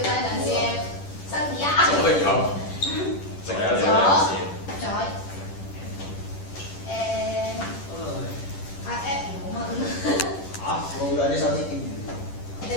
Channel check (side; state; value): right; late; 10 ms